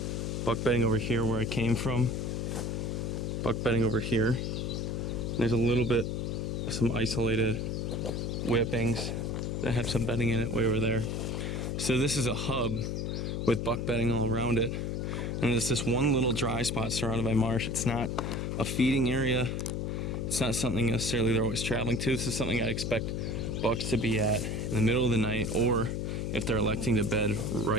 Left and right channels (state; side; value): noise; left; hum, 2 dB below the sound